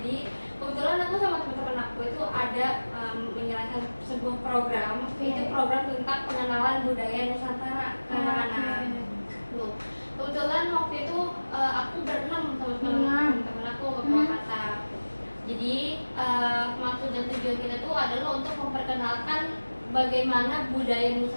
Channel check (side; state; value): both; inverted; correlation -1.00